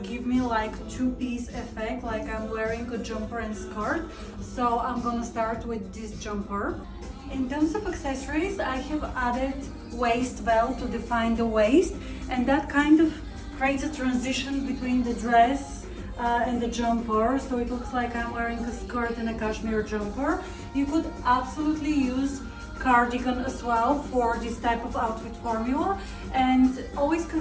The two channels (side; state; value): both; identical; correlation 1.00